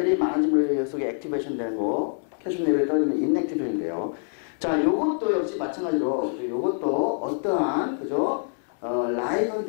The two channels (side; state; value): right; silent; 61 dB below the other